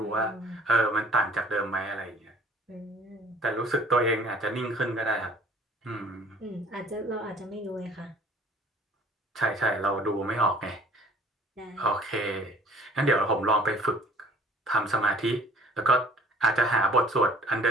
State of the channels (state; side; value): normal; both; correlation 0.53